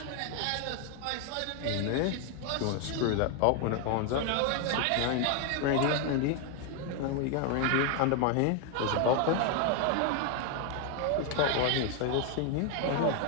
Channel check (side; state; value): both; different; correlation 0.00